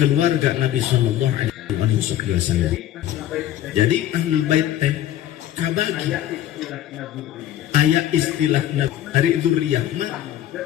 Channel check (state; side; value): quieter; right; 12.4 dB